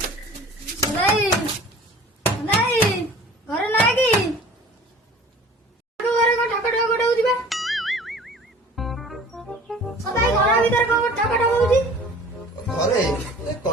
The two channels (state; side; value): normal; both; correlation 0.46